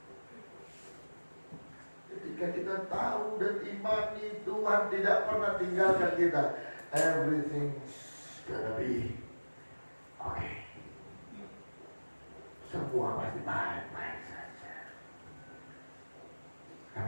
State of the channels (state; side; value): inverted; both; correlation -1.00